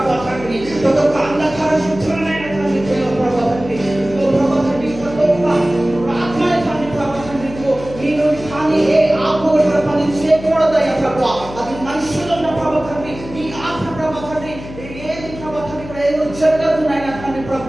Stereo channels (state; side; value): noise; left; hum, 14 dB below the sound